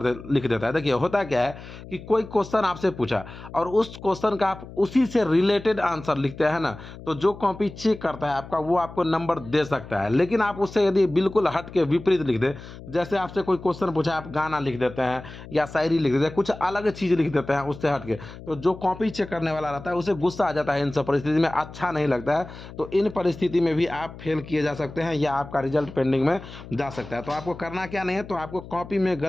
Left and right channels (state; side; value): noise; left; hum, 15 dB below the sound